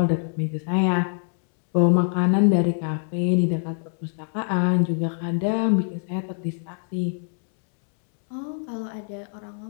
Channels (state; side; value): silent; right; 58 dB below the other